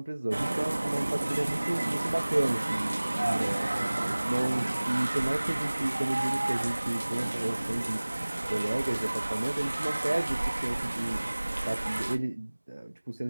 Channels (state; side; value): inverted; both; correlation -1.00